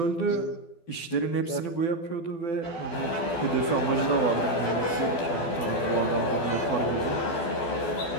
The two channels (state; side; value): late; right; 12 ms